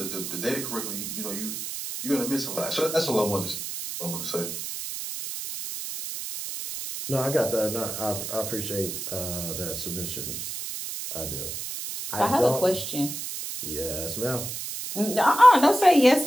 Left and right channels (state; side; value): noise; right; hiss, 6 dB below the sound